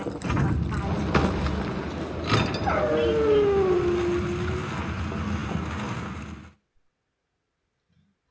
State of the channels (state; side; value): identical; both; correlation 1.00